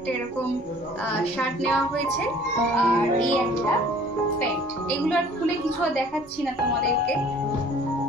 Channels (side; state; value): both; normal; correlation 0.52